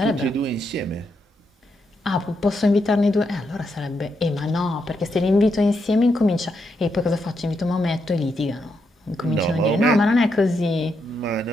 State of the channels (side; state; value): both; normal; correlation 0.81